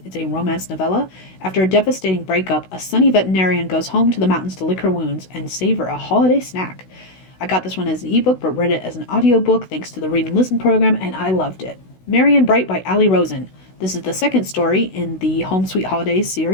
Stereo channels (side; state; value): right; late; 16 ms